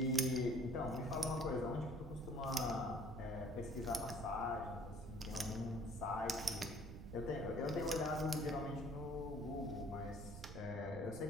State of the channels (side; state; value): right; noise; rumble, 10 dB below the sound